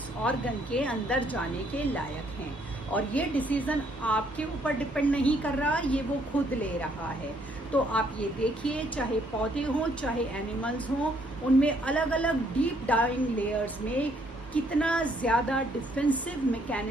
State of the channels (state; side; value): normal; both; correlation 0.68